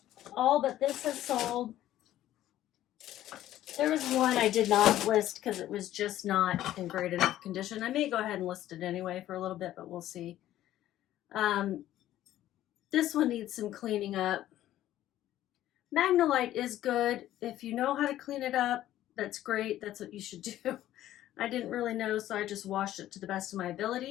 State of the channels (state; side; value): quieter; right; 13.3 dB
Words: All but this has sold. There was one I did not list because it was just not in great enough condition. I may go ahead and list it anyway for a little bit, but we'll see. This one needs some cleaning up. Magnolite is good. If you know how to clean it up, that's great. That's what you should do. I didn't really know, so I just washed it to the best of my